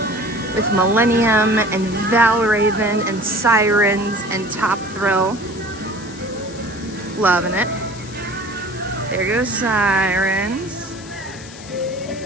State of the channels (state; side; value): noise; left; hiss, 17 dB below the sound